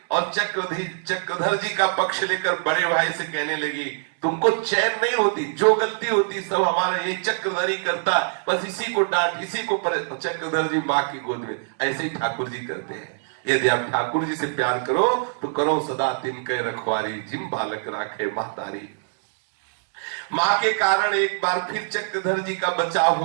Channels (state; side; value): silent; left; digital silence